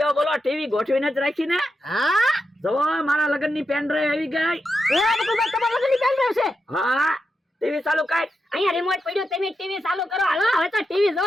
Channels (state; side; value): normal; both; correlation 0.87